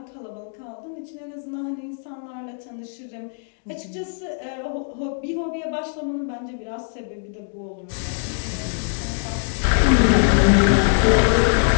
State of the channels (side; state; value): right; silent; 64 dB below the other